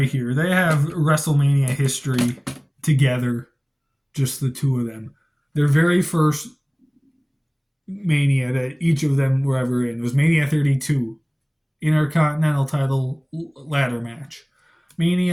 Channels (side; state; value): both; identical; correlation 1.00